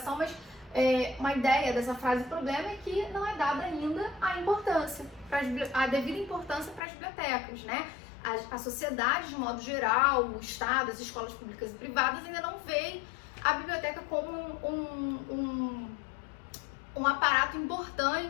mas uma ideia dessa frase problema é que não é dada ainda a devida importância para as bibliotecas, né? A sociedade, de modo geral, o Estado, as escolas públicas e privadas ainda não veem a biblioteca como um aparato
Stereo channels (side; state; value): right; drops out; at 6.8 s